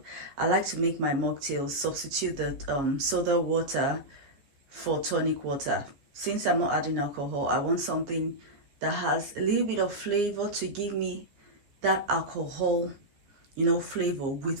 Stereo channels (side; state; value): left; late; 15 ms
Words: I like to make my mocktail substitute the soda water for tonic water. Since I'm not adding alcohol, I want something that has a little bit of flavor to give me that alcohol, flavor